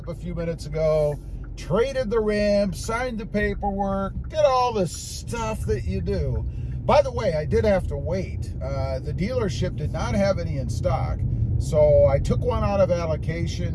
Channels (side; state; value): both; identical; correlation 1.00